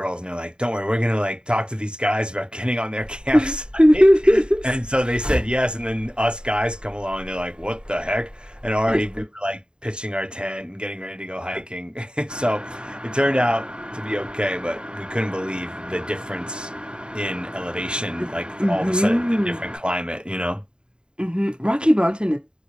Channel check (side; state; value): left; late; 0.050 ms